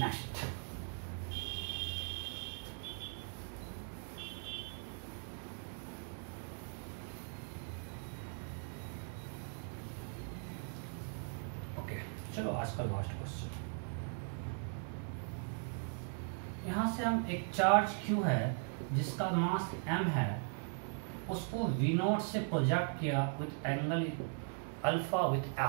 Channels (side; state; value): left; silent; 52 dB below the other